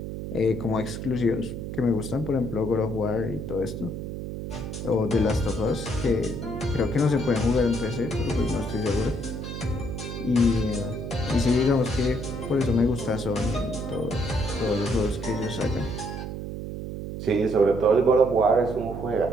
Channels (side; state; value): right; noise; hum, 6 dB below the sound